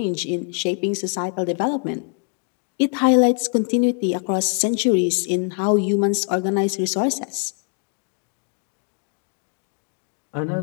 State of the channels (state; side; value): quieter; right; 39.6 dB